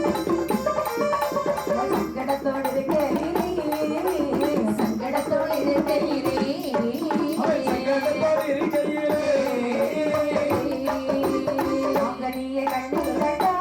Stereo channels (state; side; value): identical; both; correlation 1.00